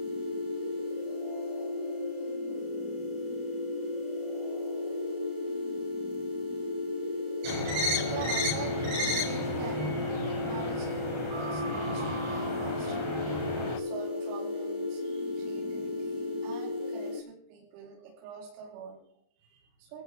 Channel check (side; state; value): left; late; 33 ms